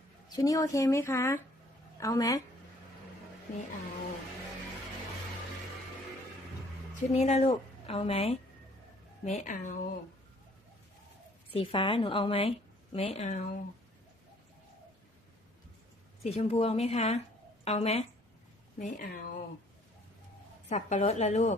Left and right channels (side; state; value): both; normal; correlation 0.59